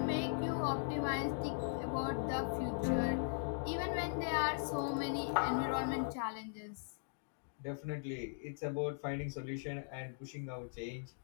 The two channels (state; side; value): silent; right; digital silence